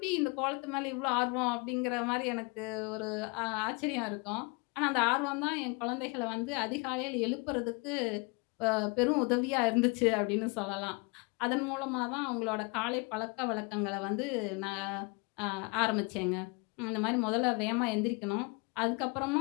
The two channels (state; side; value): quieter; right; 30.4 dB